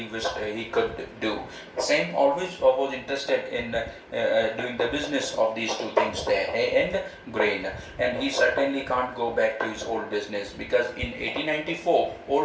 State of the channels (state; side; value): identical; both; correlation 1.00